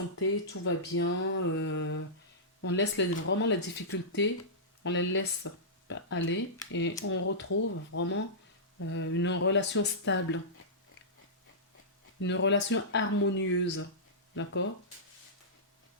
tout va bien. On laisse vraiment les difficultés, on les laisse aller et on retrouve vraiment une relation stable. Une relation harmonieuse. D'accord?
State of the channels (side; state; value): both; normal; correlation -0.16